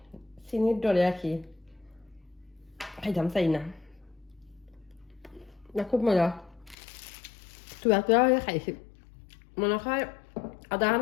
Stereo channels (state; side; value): drops out; right; at 6.8 s